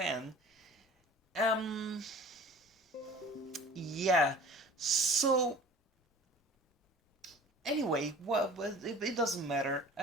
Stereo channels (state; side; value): normal; both; correlation 0.43